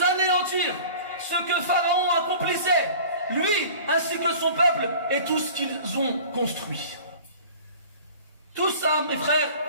anéantir ce que Pharaon accomplissait, lui ainsi que son peuple et tout ce qu'ils ont construit. Tout ça, mes frères,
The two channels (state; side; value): inverted; both; correlation -0.43